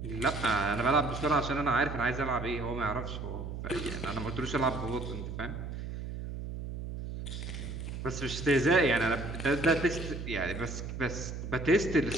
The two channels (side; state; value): right; noise; hum, 7 dB below the sound